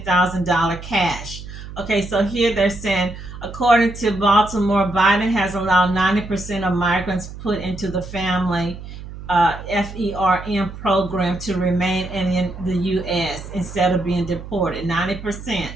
cash. Okay, so here they're saying, according to Baltimore, Biden has allowed 90% of migrants put into the family FERM program to remain in the U.S. instead of being deported. 90%.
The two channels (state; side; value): noise; right; hum, 12 dB below the sound